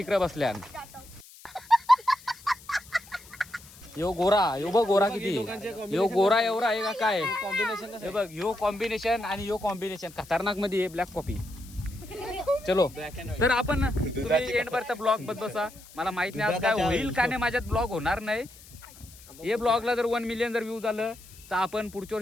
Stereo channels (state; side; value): noise; left; hiss, 21 dB below the sound